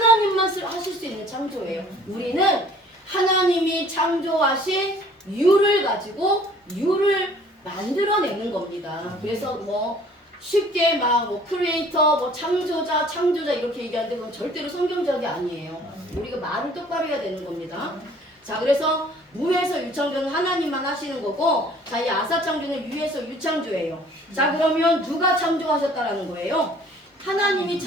하실 수 있는 창조예요. 우리는 하나님이 창조하신 유를 가지고 유를 만들어내는 겁니다. 그래서 뭐 쉽게 막 뭐 크리에이터, 뭐 창조자 이렇게 얘기하는데 그건 절대로 성경적이 아니에요. 우리가 말을 똑바로 해야 되는 겁니다. 자, 그래서 무에서 유창조는 하나님만 하시는 거고, 자, 이 아사창조는 유에서 유창조예요. 자, 그러면 누가 창조하셨다라는 거예요? 하나님이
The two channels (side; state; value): both; normal; correlation 0.54